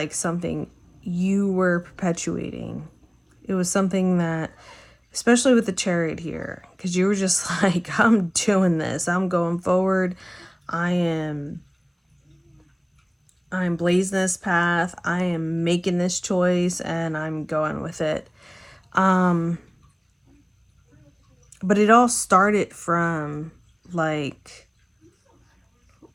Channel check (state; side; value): identical; both; correlation 1.00